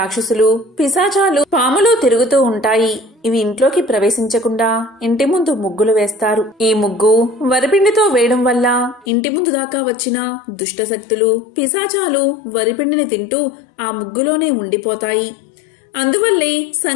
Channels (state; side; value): drops out; right; at 9.1 s